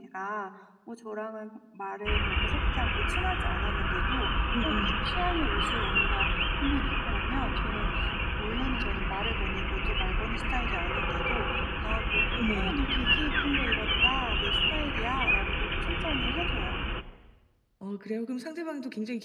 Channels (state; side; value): identical; both; correlation 1.00